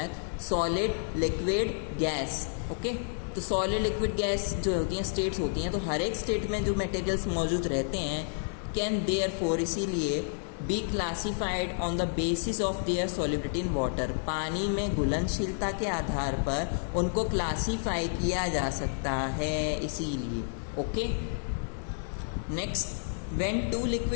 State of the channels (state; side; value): silent; right; digital silence